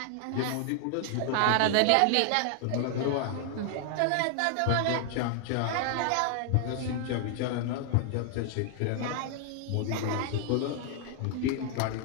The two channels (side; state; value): both; different; correlation 0.00